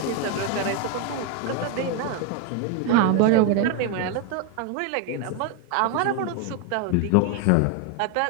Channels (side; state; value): both; different; correlation 0.01